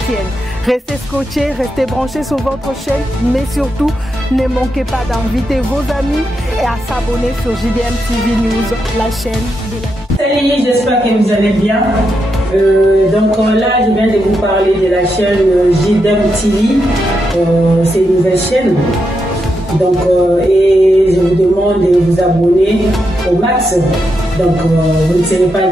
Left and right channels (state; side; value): normal; both; correlation 0.84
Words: Restez scotchés, restez branchés sur votre chaîne, mais surtout, ne manquez pas d'inviter vos amis et à s'abonner sur JDM TV News, la chaîne de la... Salut, j'espère que vous allez bien. Donc là, je viens de vous parler de la chaîne JDM TV. C'est une nouvelle chaîne. Donc, et je vous demande de vous abonner au max. Donc, vous ne serez pas